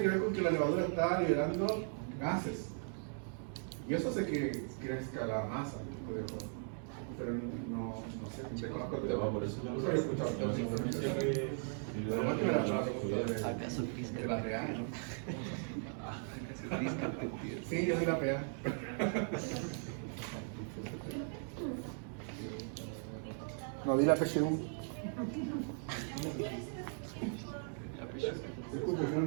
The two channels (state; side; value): silent; left; 52 dB below the other